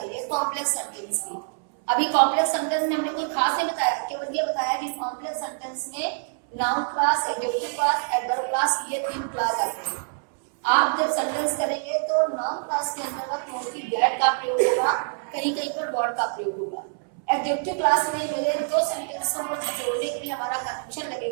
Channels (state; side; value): silent; left; 61 dB below the other